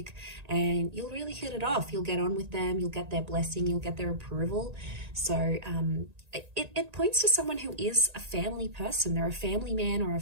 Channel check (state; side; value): late; left; 1.9 ms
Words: and you'll really hit it off. You'll get on with them. You'll get their blessing. You'll get their approval. So it points to someone who is a family person. They're a family man or a